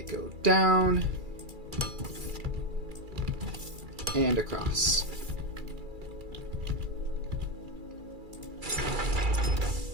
go down and across.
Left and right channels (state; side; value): late; left; 2.3 ms